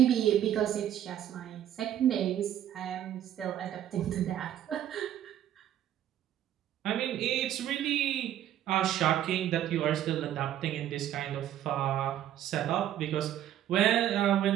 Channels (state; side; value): quieter; left; 11.4 dB